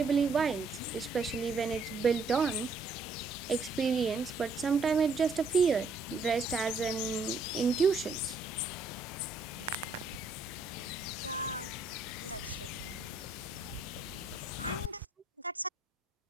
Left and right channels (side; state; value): left; quieter; 3.6 dB